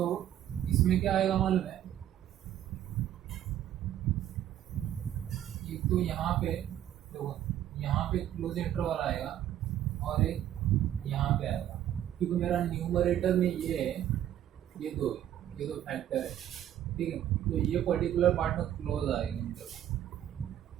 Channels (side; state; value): left; quieter; 11.4 dB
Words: इसमें क्या आएगा मालूम है, एक तो यहाँ पे क्लोज इंटरवल आएगा और एक यहाँ पे आएगा, क्योंकि मेरा न्यूमरेटर में ये है, ये दो फैक्टर है, ठीक है, तो ये पर्टिकुलर पार्ट में क्लोज आएगा इंटरवल,